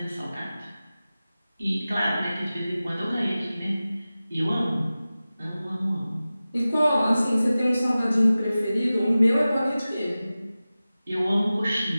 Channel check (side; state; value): both; inverted; correlation -0.96